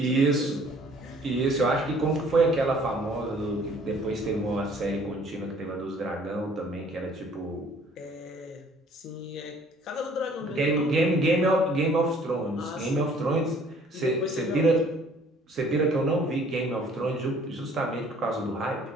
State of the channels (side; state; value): both; normal; correlation 0.56